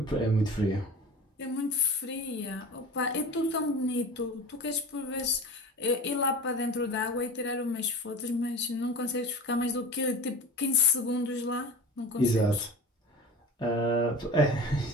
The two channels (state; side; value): normal; both; correlation 0.34